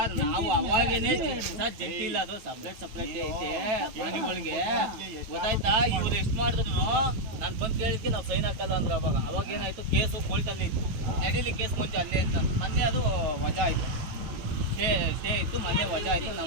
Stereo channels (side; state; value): left; late; 9.1 ms